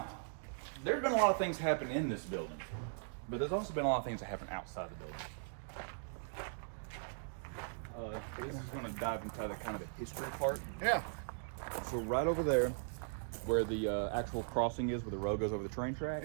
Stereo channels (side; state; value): left; silent; digital silence